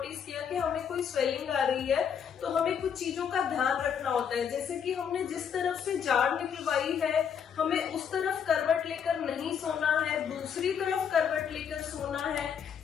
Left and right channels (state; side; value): quieter; right; 7.6 dB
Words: किया कि हमें कोई स्वेलिंग आ रही है, तो हमें कुछ चीजों का ध्यान रखना होता है। जैसे कि हमने जिस तरफ से जाड़ निकलवाई है, हमें उस तरफ करवट लेकर नहीं सोना है, दूसरी तरफ करवट लेकर सोना है।